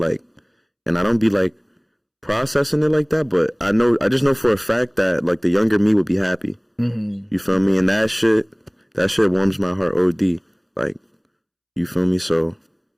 and I don't be like processing it like that, but I just know for a fact that like the younger me would be happy. You feel me? And that shit warms my heart OD. Like, you feel me? So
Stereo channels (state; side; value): identical; both; correlation 1.00